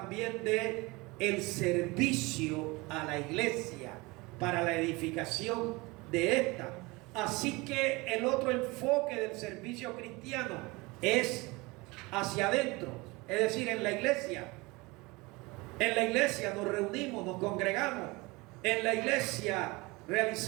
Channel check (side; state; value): left; quieter; 24.1 dB